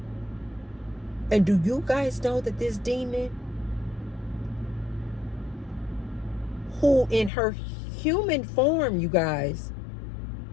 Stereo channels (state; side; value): drops out; right; at 7.3 s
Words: and do you guys know that this demon, who in her human form, you guys,